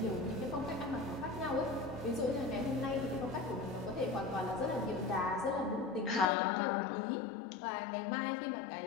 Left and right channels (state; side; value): drops out; right; at 6.2 s